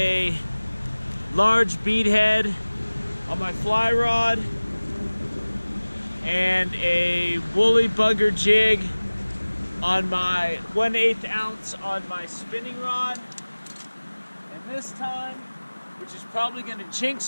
large beadhead on my fly rod and a woolly bugger jig on my 1/8 ounce on my spinning rod. And this time, which is probably gonna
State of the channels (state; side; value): inverted; both; correlation -1.00